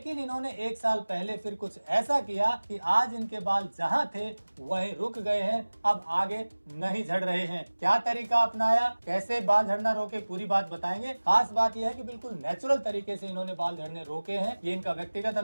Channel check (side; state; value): both; inverted; correlation -1.00